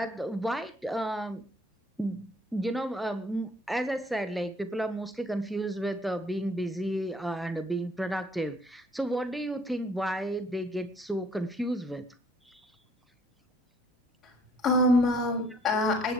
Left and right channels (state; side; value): normal; both; correlation 0.61